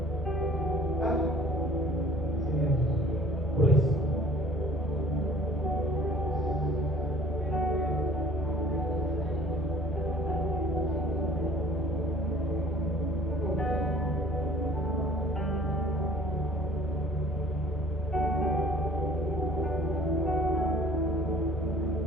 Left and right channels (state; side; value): normal; both; correlation 0.52